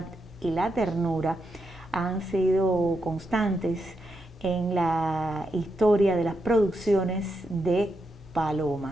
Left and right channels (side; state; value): both; normal; correlation 0.83